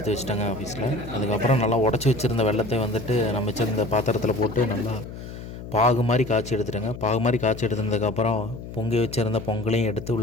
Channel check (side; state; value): left; noise; hum, 11 dB below the sound